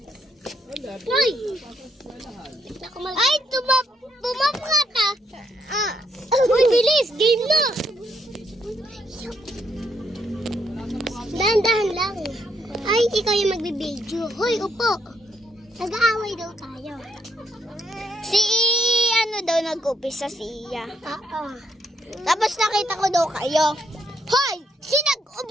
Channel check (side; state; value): both; normal; correlation 0.76